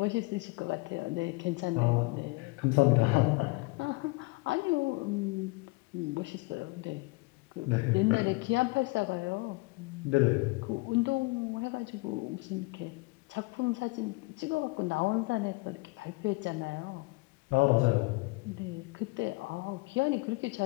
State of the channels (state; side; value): quieter; right; 25.7 dB